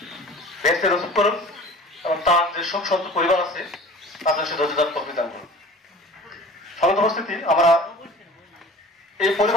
বেহেশতে নসিব করুন এবং তার যে শোক সন্ত পরিবার আছে তাদের সে ধৈর্যধার তৌফিক দান করুন। সম্মানিত উপস্থিতি, আমরা এই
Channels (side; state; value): both; normal; correlation 0.43